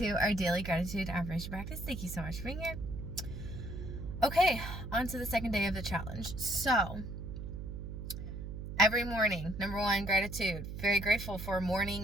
our daily gratitude affirmation practice. Thank you so much for being here. Okay, on to the second day of the challenge. So, every morning, number one, gratitude. Very grateful for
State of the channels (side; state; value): right; noise; hum, 7 dB below the sound